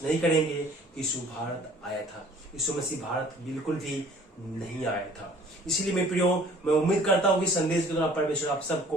नहीं करेंगे कि यीशु भारत आया था। यीशु मसीह भारत बिल्कुल भी नहीं आया था। इसलिए मेरे प्रियो, मैं उम्मीद करता हूँ कि संदेश के द्वारा परमेश्वर आप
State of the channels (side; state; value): both; normal; correlation 0.53